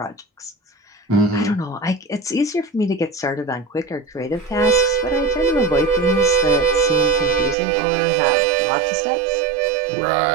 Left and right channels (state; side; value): drops out; left; at 7.6 s